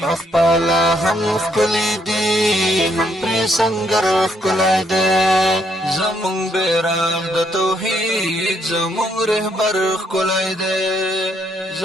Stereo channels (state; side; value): normal; both; correlation 0.73